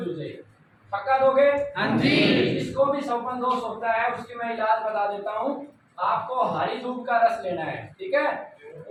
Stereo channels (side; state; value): both; identical; correlation 1.00